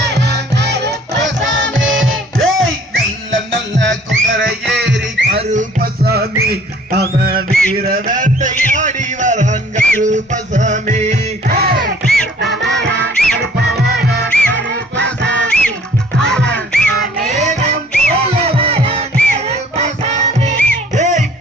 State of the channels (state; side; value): normal; both; correlation 0.55